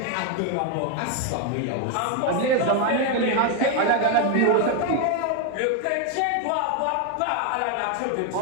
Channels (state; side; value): different; both; correlation 0.01